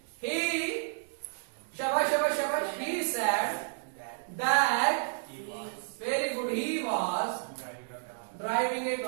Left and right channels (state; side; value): silent; left; digital silence